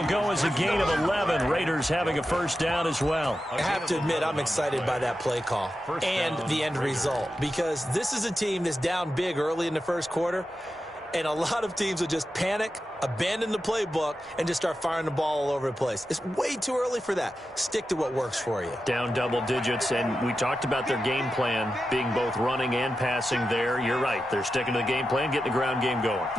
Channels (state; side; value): normal; both; correlation 0.90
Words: go as a gain of 11. Raiders having a first down as well. I have to admit, I'm excited by that play call and the end result, because this is a team that's down big early in the first quarter, and a lot of teams will just panic, abandon the playbook, and just start firing the ball all over the place. It's way too early for that. Stick to what works for you. Down double digits, and we talked about their game plan being both running and passing there. You're right. They're sticking to the game plan, getting the ground game going.